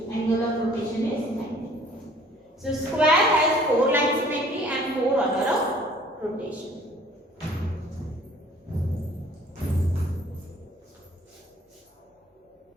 Angle of rotation is 90. So square has 4 line symmetry and 4 order of rotation.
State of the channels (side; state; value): both; normal; correlation 0.55